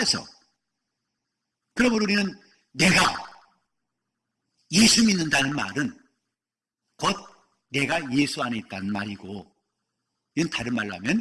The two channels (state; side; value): identical; both; correlation 1.00